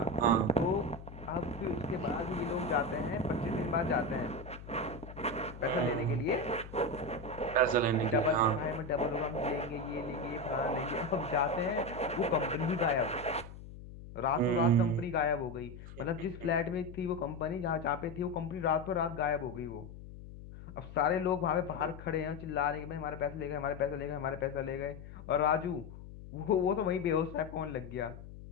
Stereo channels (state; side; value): noise; left; hum, 14 dB below the sound